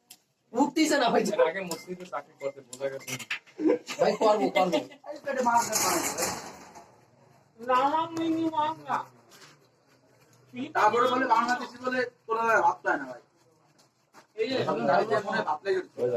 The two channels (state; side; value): identical; both; correlation 1.00